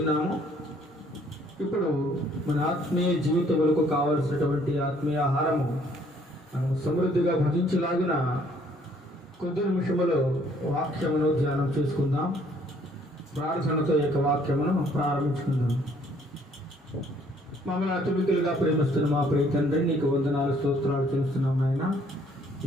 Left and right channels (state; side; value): normal; both; correlation 0.62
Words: ఇప్పుడు మన ఆత్మీయ జీవితములకు కావలసినటువంటి ఆత్మీయ ఆహారము మనం సమృద్ధిగా భజించలాగిన కొద్ది నిమిషములో వాక్యమును ధ్యానం చేసుకుందాం. ప్రార్థనతో ఈ యొక్క వాక్యమును ప్రారంభించుకుందాం. మమ్మల్ని అతిమికులుగా ప్రేమిస్తున్న మా ప్రియ తండ్రి, నీకు వందనాలు, స్తోత్రాలు చేస్తున్నాం నాయన.